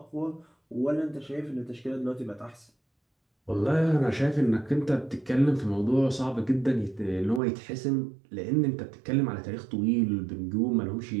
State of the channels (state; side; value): drops out; left; at 7.4 s